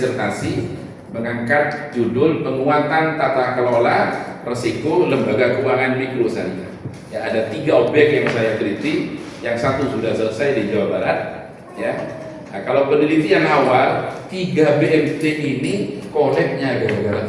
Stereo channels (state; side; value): identical; both; correlation 1.00